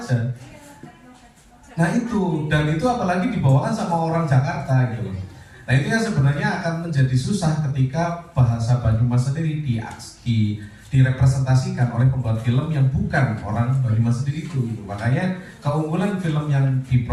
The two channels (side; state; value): both; identical; correlation 1.00